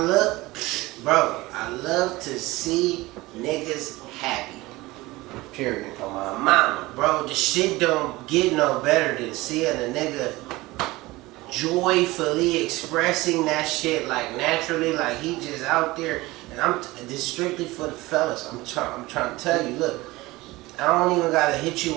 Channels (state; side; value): quieter; left; 20.2 dB